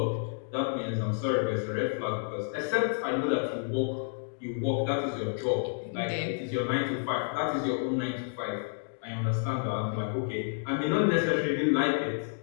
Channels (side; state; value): right; silent; digital silence